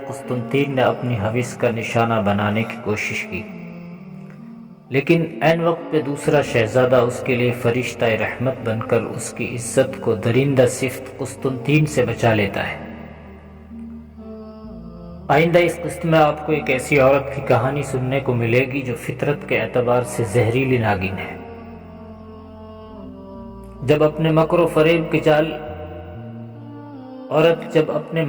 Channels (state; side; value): identical; both; correlation 1.00